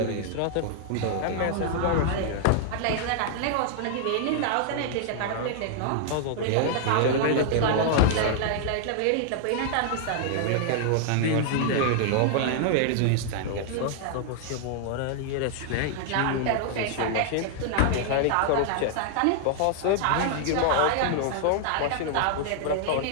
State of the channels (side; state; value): both; different; correlation -0.01